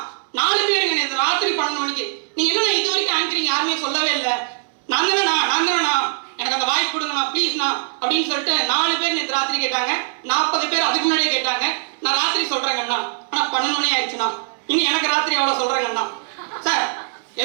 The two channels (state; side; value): silent; left; digital silence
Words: 4 பேருங்க நேற்று ராத்திரி 12 மணிக்கு நீங்க என்ன இது வரைக்கும் ஆங்கரிங் யாருமே சொல்லவே இல்லை, நான் தானேண்ணா எனக்கு அந்த வாய்ப்பு கொடுங்கண்ணா ப்ளீஸ்ண்ணா அப்படின்னு சொல்லிட்டு 4 பேர் நேற்று ராத்திரி கேட்டாங்க. 40 பேர் அதுக்கு முன்னாடியே கேட்டாங்க. நான் ராத்திரி சொல்றேங்கண்ணா, ஆனா 12 மணி ஆயிடுச்சுண்ணா, இனி எனக்கு ராத்திரி அவ்வளவு சொல்றேங்கண்ணா. சார்